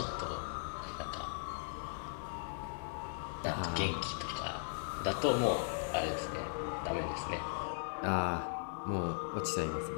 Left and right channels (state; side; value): silent; right; digital silence